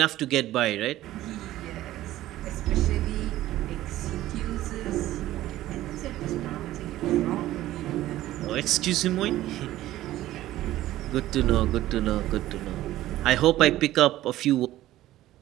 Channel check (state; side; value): quieter; left; 14.9 dB